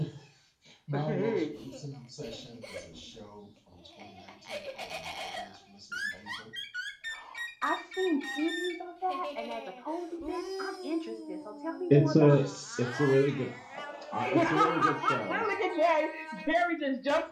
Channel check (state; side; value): identical; both; correlation 1.00